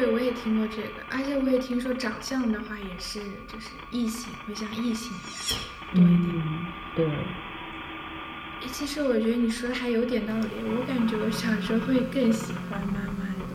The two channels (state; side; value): identical; both; correlation 1.00